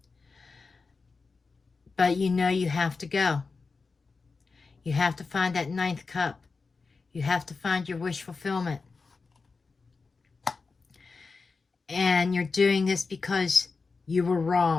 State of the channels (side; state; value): right; quieter; 4.4 dB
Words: But you know you have to go. You have to find that ninth cup. You have to find your wish fulfillment. And you're doing this because you were